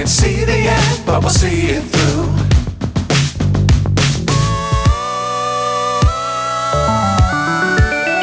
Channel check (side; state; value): both; identical; correlation 1.00